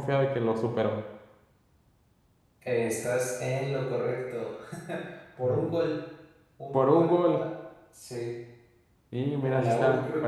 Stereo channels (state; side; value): identical; both; correlation 1.00